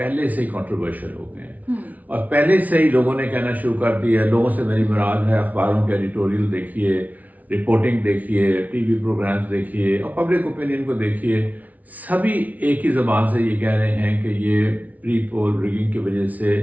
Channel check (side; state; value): left; late; 0.073 ms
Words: سے ہی کنٹروورشل ہو گئے ہیں. اور پہلے سے ہی لوگوں نے کہنا شروع کر دیا ہے. لوگوں سے میری مراد ہے اخباروں کے ایڈیٹوریل دیکھیے، رپورٹنگ دیکھیے، ٹی وی پروگرامز دیکھیے اور پبلک اوپینین کو دیکھیے، سبھی ایک ہی زبان سے یہ کہہ رہے ہیں کہ یہ پری پول ریگنگ کی وجہ سے